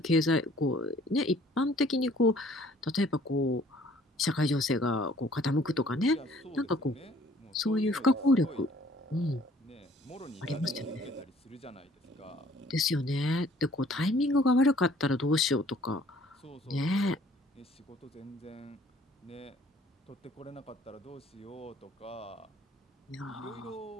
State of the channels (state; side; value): normal; both; correlation 0.57